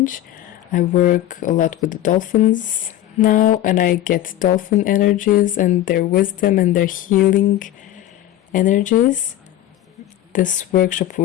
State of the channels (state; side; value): quieter; right; 13.2 dB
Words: I work a lot with the dolphins now, and I get dolphin energies and their wisdom and their healing energies. This workshop